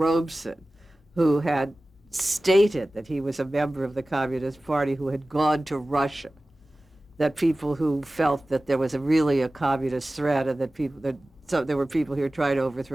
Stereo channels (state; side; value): normal; both; correlation 0.97